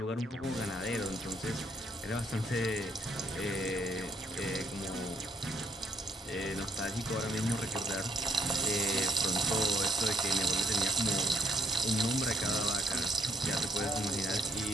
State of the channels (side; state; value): both; normal; correlation 0.67